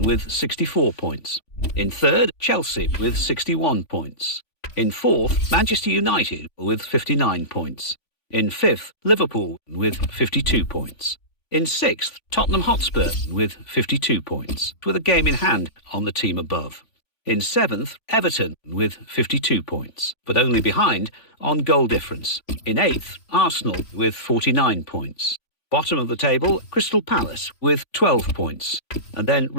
64 points. In third, Chelsea with 61 points. In fourth, Manchester United with 59 points. In fifth, Liverpool with 52 points. In sixth, Tottenham Hotspur with 52 points, with a game in hand on the team above. In seventh, Everton with 52 points, but only behind on goal difference. In eighth, Arsenal with 49 points. Bottom of the table, Crystal Palace with 12 points. And then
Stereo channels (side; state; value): right; late; 3.5 ms